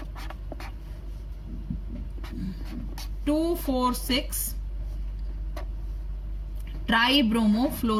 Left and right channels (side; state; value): both; identical; correlation 1.00